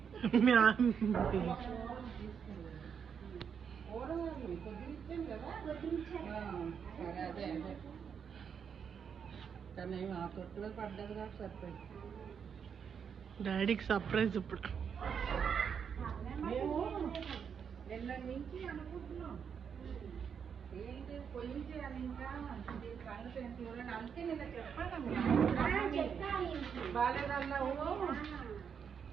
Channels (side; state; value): left; quieter; 7.1 dB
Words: సరే అదే అదే కానీ ఆ తొట్టులో పడ్డది కాబట్టి సరిపోయింది. డాడీకి సర్ప్రైజ్ ఇప్పుడు. మేము నిన్న నుంచి అనుకుంటున్నాం ఏంటి పోయించేయాలి ఇంకా సంగతి ఏంటి చూడండి. అందుకే నిన్న చెప్పాను బాగాలేదన్నావు.